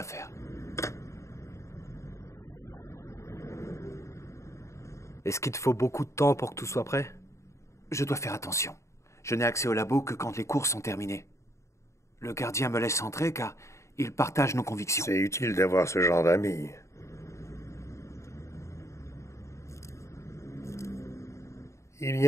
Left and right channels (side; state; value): right; late; 0.14 ms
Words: Est-ce qu'il te faut beaucoup de temps pour que tout soit prêt? Je dois faire attention. Je n'ai accès au labo que quand les cours sont terminés. Le gardien me laisse entrer car il partage nos convictions. C'est utile d'avoir ce genre d'amis. Il